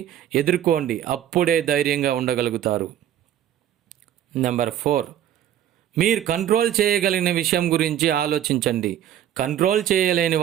ఎదుర్కోండి, అప్పుడే ధైర్యంగా ఉండగలుగుతారు. నెంబర్ 4, మీరు కంట్రోల్ చేయగలిగిన విషయం గురించి ఆలోచించండి, కంట్రోల్ చేయలేని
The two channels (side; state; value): left; quieter; 10.8 dB